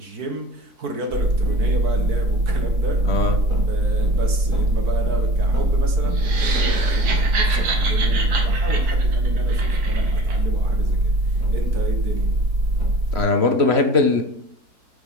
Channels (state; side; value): late; left; 4.6 ms